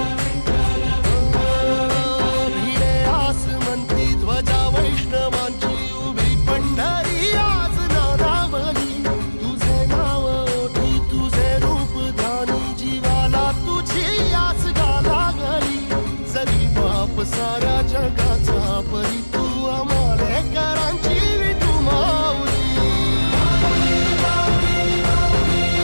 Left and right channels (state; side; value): inverted; both; correlation -1.00